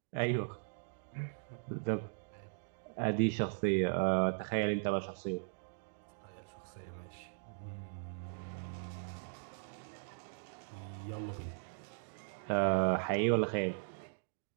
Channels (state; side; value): silent; left; digital silence